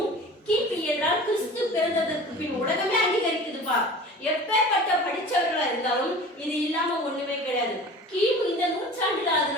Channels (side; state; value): both; normal; correlation 0.39